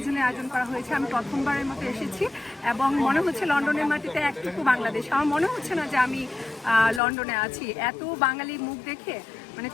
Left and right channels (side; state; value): right; drops out; at 7.0 s